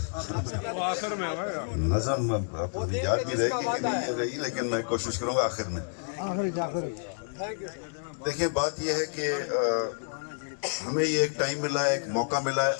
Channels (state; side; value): silent; right; digital silence